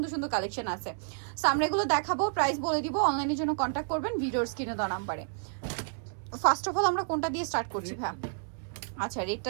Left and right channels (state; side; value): silent; left; digital silence